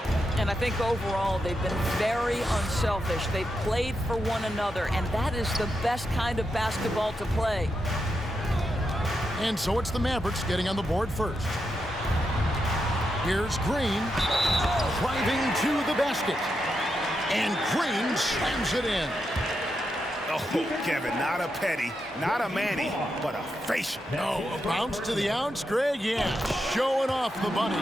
And I think overall they've been very unselfish. They've played for one another, and that is the best kind of basketball to play. And so it's the Mavericks getting on the board first. Here's Green, driving to the basket. And Green slams it in. Oh, Kevin, not a petty, not a Manny, but a facial. No, a bounce to the ounce, Greg, yeah, showing off the bunnies.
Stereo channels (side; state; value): both; normal; correlation 0.85